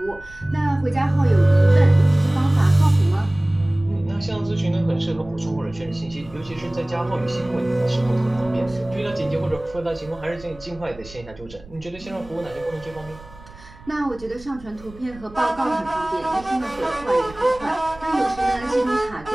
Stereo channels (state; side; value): noise; right; rumble, 20 dB below the sound